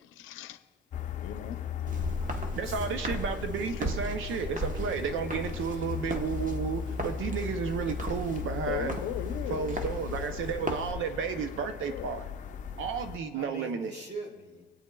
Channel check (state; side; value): normal; both; correlation 0.31